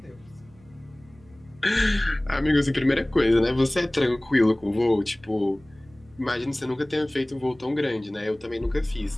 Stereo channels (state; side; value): noise; right; hum, 27 dB below the sound